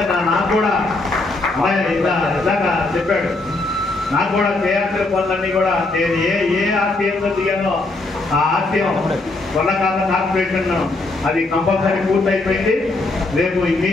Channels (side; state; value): right; quieter; 3.1 dB